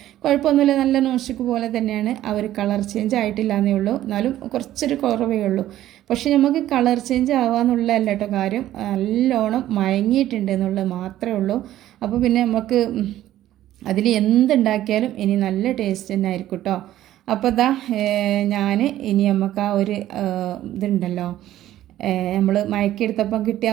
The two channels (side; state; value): left; quieter; 13.4 dB